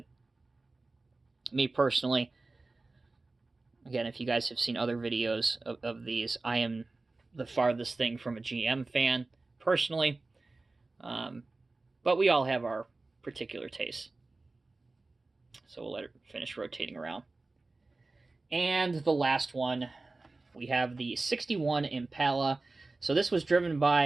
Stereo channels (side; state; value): left; quieter; 3.4 dB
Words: Me personally, again, if you guys have seen other videos of these, I am the farthest thing from a GM fan, personally. But we all have our particular tastes. So we'll let it finish rotating around. And the last one, we have the 61 Impala. So this was driven